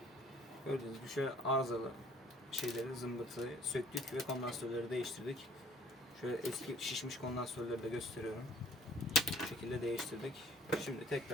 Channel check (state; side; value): normal; both; correlation 0.56